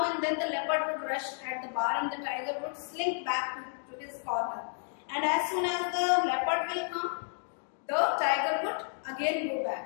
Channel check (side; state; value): right; silent; 57 dB below the other